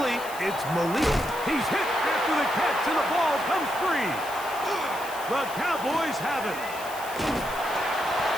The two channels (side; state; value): left; noise; hiss, 14 dB below the sound